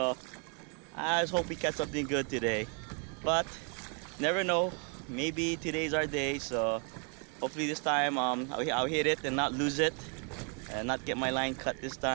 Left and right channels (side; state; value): left; quieter; 37.9 dB